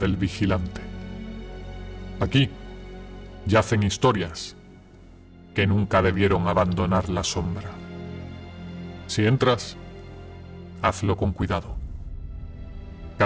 vigilante. Aquí yacen historias que nunca debieron abandonar la sombra. Si entras, hazlo con cuidado.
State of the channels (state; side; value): identical; both; correlation 1.00